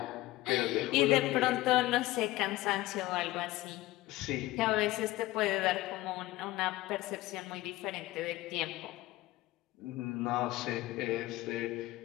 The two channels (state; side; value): quieter; right; 17.6 dB